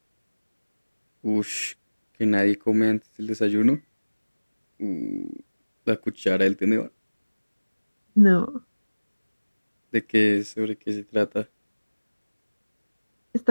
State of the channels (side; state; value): both; inverted; correlation -1.00